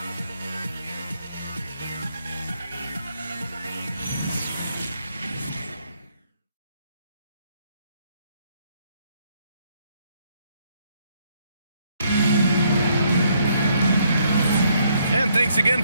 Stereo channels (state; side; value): inverted; both; correlation -0.71